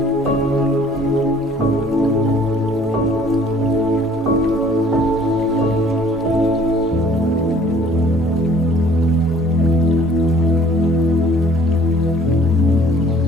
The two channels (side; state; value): both; normal; correlation 0.55